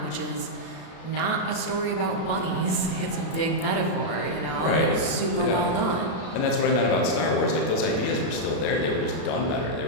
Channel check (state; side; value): late; right; 33 ms